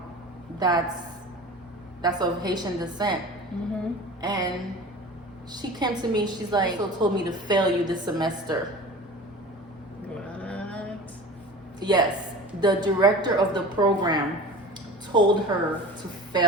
that's of Haitian descent, and she came to me. She's like, "So told me to fail you this semester." What? Yes, the director of the program told her to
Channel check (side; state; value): both; normal; correlation 0.37